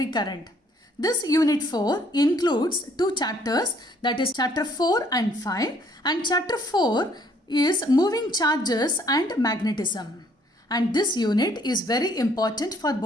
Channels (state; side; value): normal; both; correlation 0.63